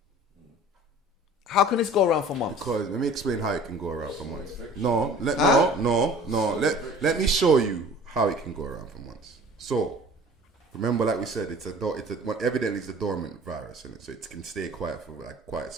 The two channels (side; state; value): both; normal; correlation 0.46